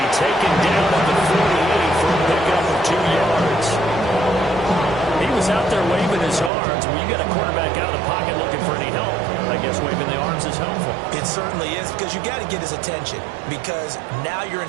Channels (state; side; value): drops out; left; at 6.5 s